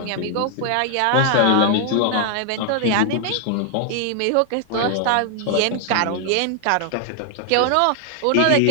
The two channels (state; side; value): different; both; correlation 0.00